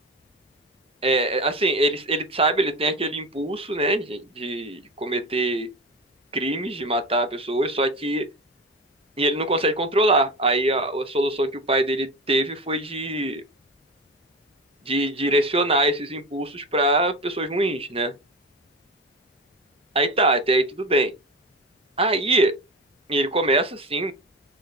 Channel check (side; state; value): both; normal; correlation 0.25